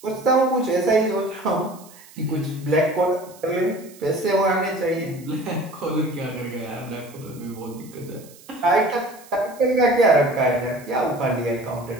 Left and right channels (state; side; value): noise; right; hiss, 23 dB below the sound